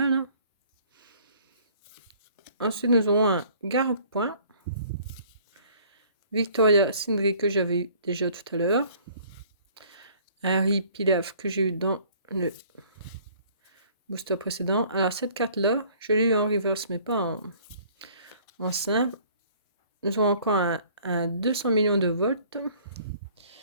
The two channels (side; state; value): both; inverted; correlation -0.56